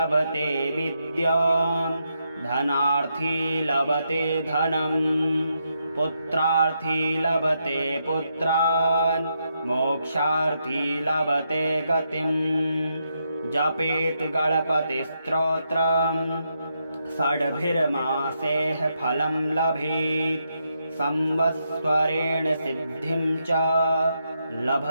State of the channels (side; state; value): both; inverted; correlation -0.81